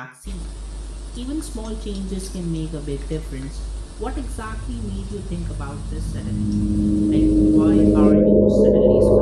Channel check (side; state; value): both; identical; correlation 1.00